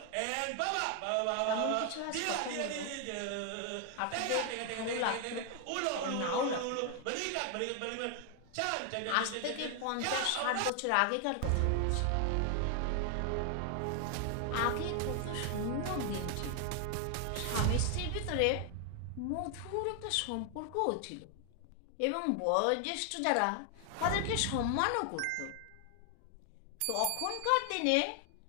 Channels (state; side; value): different; both; correlation 0.00